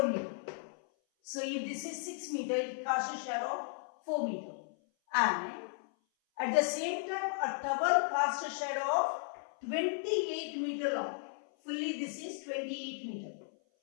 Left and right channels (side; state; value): right; silent; 54 dB below the other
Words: meter. So, if this is 6 meter, it casts a shadow of 4 meter. And at the same time, a tower casts a shadow of 28 meter long. Fully this is 28 meter.